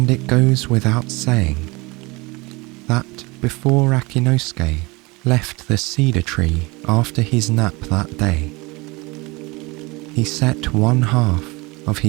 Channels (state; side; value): quieter; left; 24.6 dB